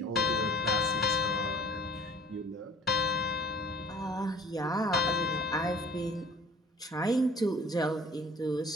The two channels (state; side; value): normal; both; correlation 0.49